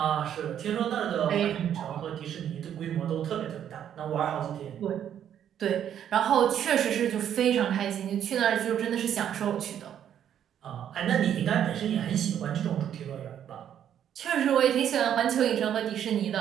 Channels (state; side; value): quieter; left; 9.7 dB